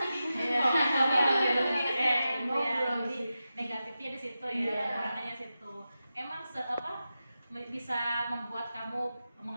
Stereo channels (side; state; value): both; inverted; correlation -0.91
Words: Jadi negatifnya di situ ya, makanya situ. Emang bisa membuat kamu